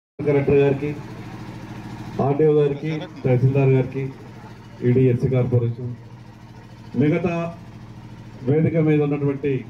కలెక్టర్ గారికి, ఆర్డీఓ గారికి, తహసీల్దార్ గారికి, ఈడీఎస్సీ కార్పొరేషన్, మిగతా వేదిక మీద ఉన్నటువంటి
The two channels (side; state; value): both; identical; correlation 1.00